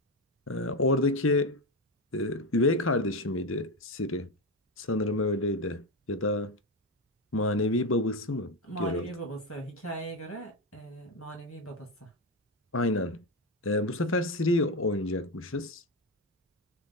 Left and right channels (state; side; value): normal; both; correlation 0.13